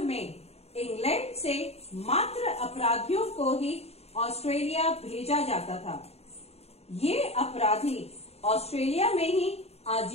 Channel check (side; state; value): right; late; 0.30 ms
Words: में इंग्लैंड से मात्र अपराधियों को ही ऑस्ट्रेलिया भेजा जाता था। ये अपराधी ऑस्ट्रेलिया में ही